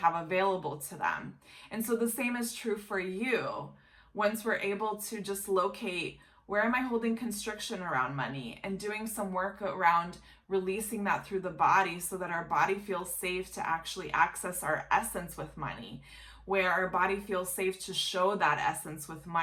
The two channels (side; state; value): both; identical; correlation 1.00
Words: available to them. And so the same is true for you. Once we're able to just locate, where am I holding constriction around money, and doing some work around releasing that through the body so that our body feels safe to actually access our essence with money, where our body feels safe to show that essence with